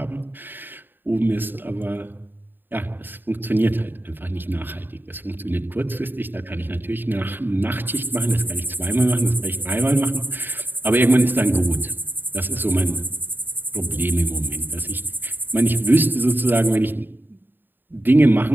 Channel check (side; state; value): left; late; 0.094 ms